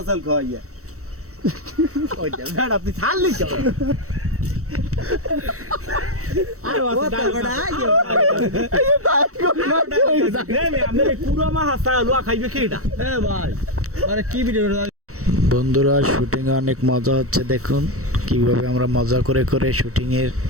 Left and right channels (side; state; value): left; late; 0.65 ms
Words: চাল খাওয়াইয়া। ওইটা ব্যাড আপনি ছাড়লি কেন? আরে কথা বড় আইও আমি পুরো মাছ চালুয়া খাইবে কেডা? এ ভাই আরে কি ভিডিও? বন্ধুরা শুটিংয়ে অনেক মজা হচ্ছে, দেখুন কিভাবে আমরা মজা করে করে শুটিংয়ের